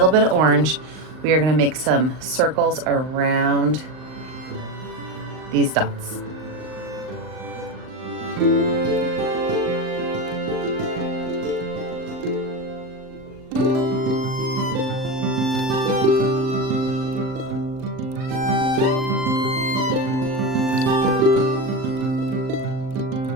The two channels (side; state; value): left; late; 39 ms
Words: bit of orange. We are going to make some circles around these dots.